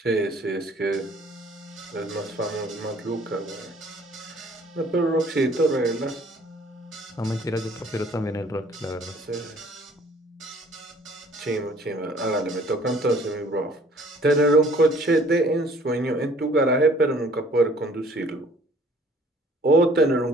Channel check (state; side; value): normal; both; correlation 0.56